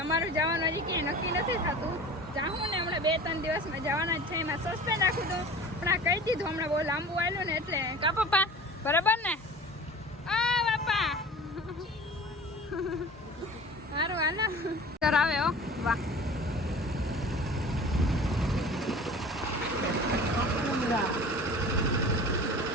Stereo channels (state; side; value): normal; both; correlation 0.40